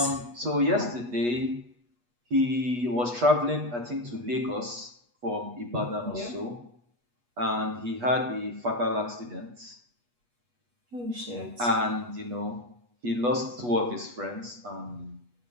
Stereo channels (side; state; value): left; late; 8.3 ms